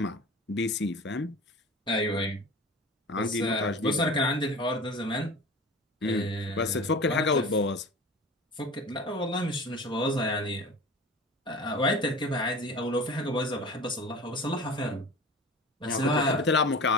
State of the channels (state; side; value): normal; both; correlation 0.37